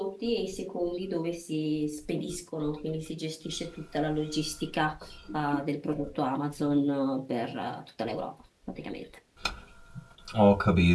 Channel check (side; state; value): both; identical; correlation 1.00